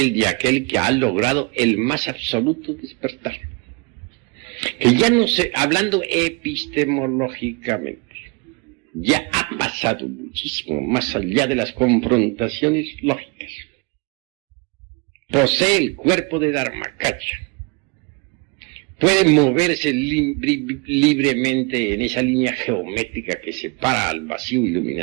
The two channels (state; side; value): quieter; left; 30.6 dB